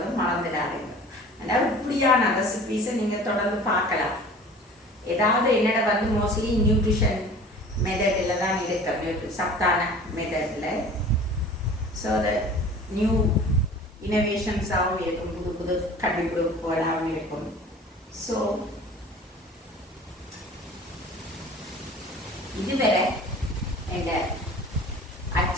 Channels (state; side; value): normal; both; correlation 0.44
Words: மறந்துடாதீங்க. அதாவது இப்படியான ரெசிபீஸை நீங்கள் தொடர்ந்து பார்க்கலாம். ஏதாவது என்னோட வந்து மோஸ்ட்லி நியூட்ரிஷன் மெத்தடில் தான் இருக்கு, சத்தான மெத்தடில். ஸோ அது நியூ இனோவேஷன்ஸாகவும் இருக்கும், புது புது கண்டுபிடிப்புகளாகவும் இருக்கும். ஸோ இதுவரை எங்கள்